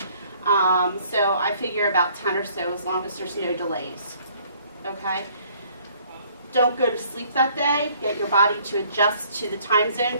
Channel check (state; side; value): inverted; both; correlation -0.60